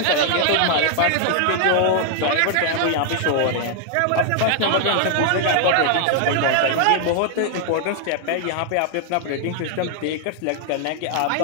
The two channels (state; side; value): different; both; correlation 0.00